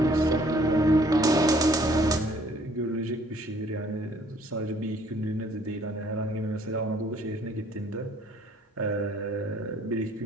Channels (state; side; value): normal; both; correlation 0.60